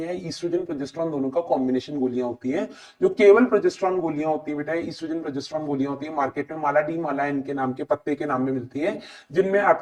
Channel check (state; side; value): identical; both; correlation 1.00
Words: हैं, ईस्ट्रोजन प्रोजेस्टेरॉन दोनों का कॉम्बिनेशन गोलियां होती हैं। जो केवल प्रोजेस्टेरॉन गोलियां होती है बेटा, ईस्ट्रोजन प्रोजेस्टेरॉन गोलियां होती है, मार्केट में माला डी माला इनके नाम के पत्ते के नाम में मिलती है, जिनमें